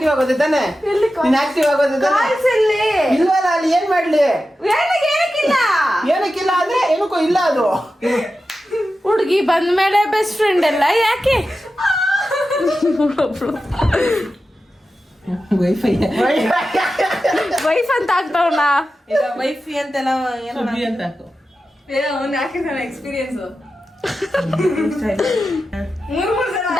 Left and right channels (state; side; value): normal; both; correlation 0.92